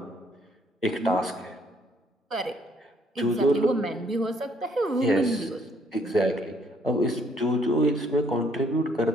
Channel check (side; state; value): both; normal; correlation 0.66